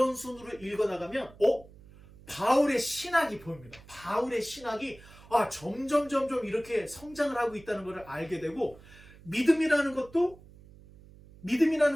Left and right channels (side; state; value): right; noise; hum, 22 dB below the sound